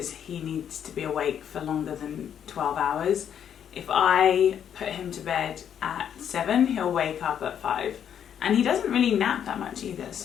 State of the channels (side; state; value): right; quieter; 8.9 dB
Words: he needs to be awake for longer than 12 hours. If I put him to bed at 7, he'll wake up at 5. And he doesn't really nap that much either,